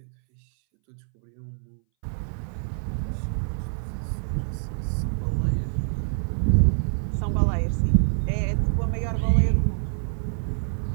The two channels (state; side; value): silent; left; 61 dB below the other